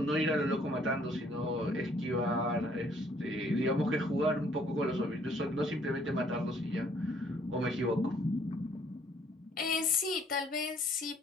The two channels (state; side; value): normal; both; correlation 0.62